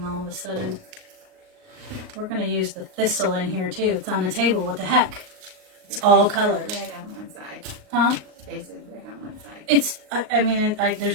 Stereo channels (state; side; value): late; left; 38 ms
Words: all of a sudden? We're going to use the thistle in here too. It's on the table. What the heck? It's all colors. Red on one side. Huh? Faces red on one side. It's, I mean,